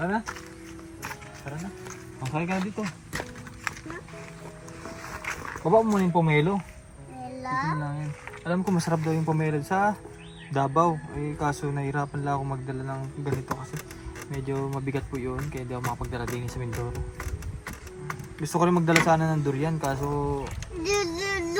na. Tara na. Kaya ka na dito. Baba mo muna yung pomelo. Ito lang yan. Alam ko masarap daw yung pomelo sa Davao. Eh kaso nahirapan lang ako magdala ng ganito kasi medyo mabigat po yun. Kaya hindi ako makapagdala din sa Mindoro. Gusto ko rin magdala sana ng durian kaso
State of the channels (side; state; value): both; identical; correlation 1.00